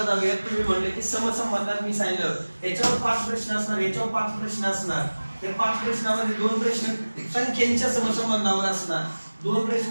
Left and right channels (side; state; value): both; inverted; correlation -1.00